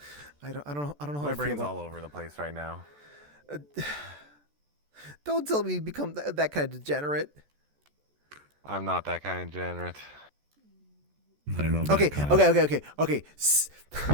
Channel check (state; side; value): late; left; 14 ms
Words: don't know. I don't know how My to brain's feel all over the place right now. Don't tell me you become that kind of degenerate. I'm not that kind of degenerate. Okay.